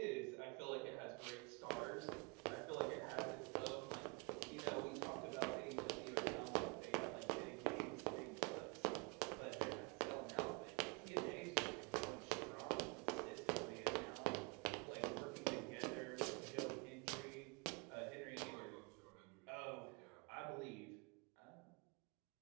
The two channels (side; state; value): left; quieter; 32.1 dB